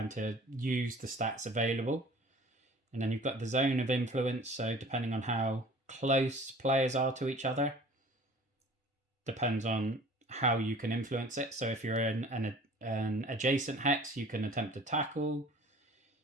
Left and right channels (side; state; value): both; normal; correlation 0.47